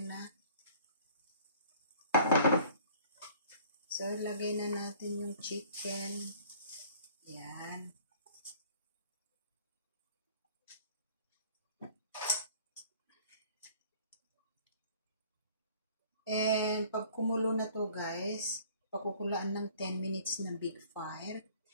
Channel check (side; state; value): both; inverted; correlation -0.53